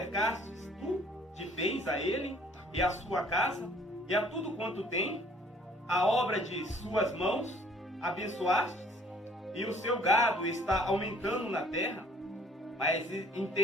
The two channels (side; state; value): both; normal; correlation 0.57